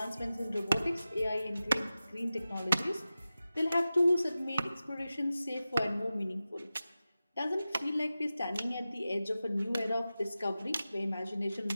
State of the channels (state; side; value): inverted; both; correlation -0.94